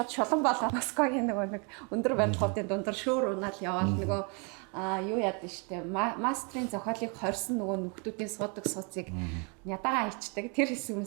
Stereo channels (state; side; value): quieter; left; 34.6 dB